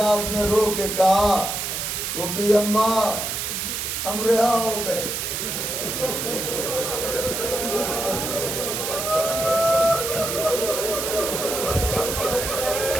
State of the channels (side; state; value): right; noise; hiss, 3 dB below the sound